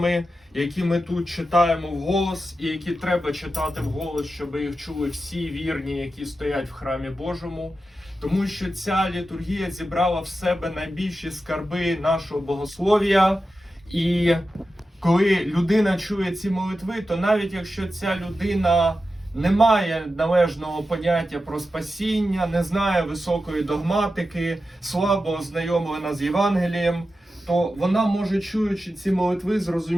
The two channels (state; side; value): normal; both; correlation 0.91